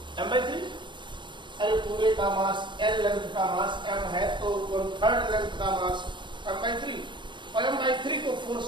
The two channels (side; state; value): left; late; 0.22 ms